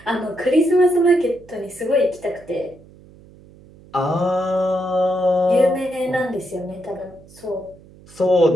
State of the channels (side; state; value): right; noise; hum, 24 dB below the sound